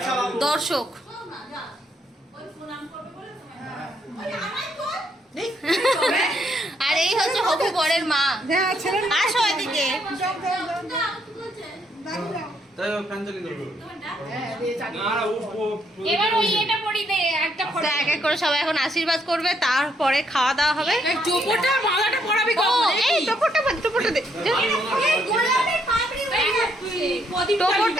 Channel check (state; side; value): normal; both; correlation 0.73